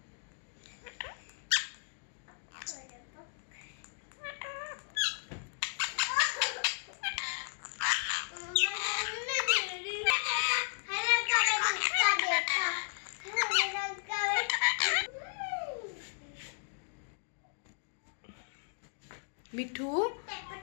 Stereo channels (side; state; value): right; silent; digital silence